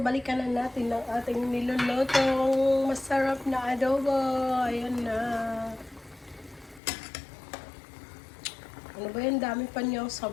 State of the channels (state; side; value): drops out; right; at 6.8 s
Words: na natin ang ating nilulutong masarap na adobo. Ayan na. Ano ba yan? Dami pa niyang